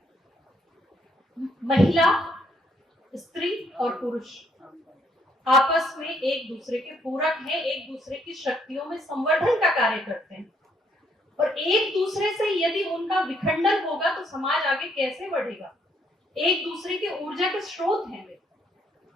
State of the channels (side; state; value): both; normal; correlation 0.69